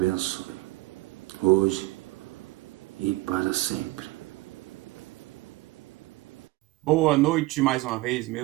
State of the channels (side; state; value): left; quieter; 20.0 dB